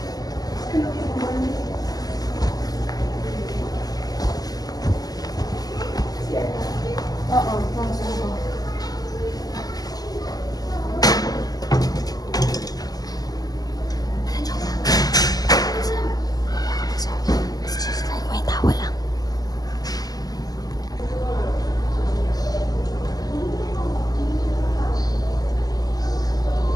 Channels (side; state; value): right; late; 0.18 ms